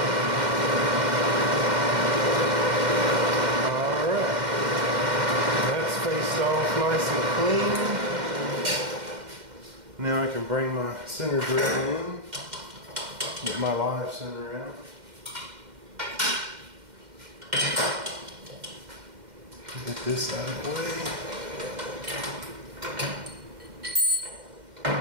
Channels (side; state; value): left; late; 2.1 ms